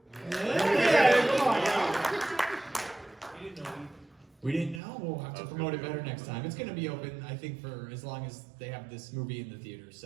We didn't know. We'll have to promote it better next time. It's going to be open, I think, for as long as they have this movie in the theater.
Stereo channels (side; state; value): left; drops out; at 4.8 s